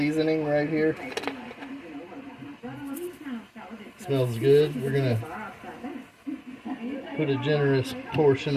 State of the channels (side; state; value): both; identical; correlation 1.00